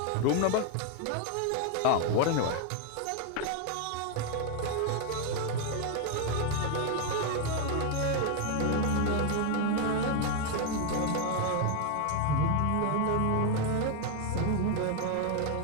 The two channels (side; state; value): both; different; correlation 0.01